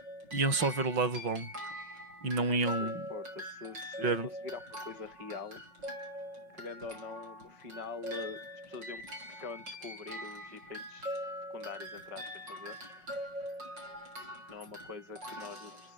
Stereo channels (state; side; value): late; left; 5.5 ms